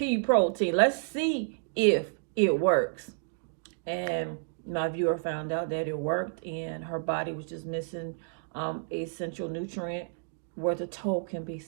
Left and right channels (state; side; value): silent; left; digital silence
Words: protein. Let's see if it works. And my viewer found out that it worked, and her body was just missing essential nutrient where the toe can be